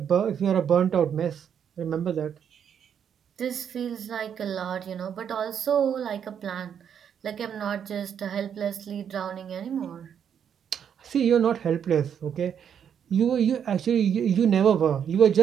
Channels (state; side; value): quieter; left; 8.3 dB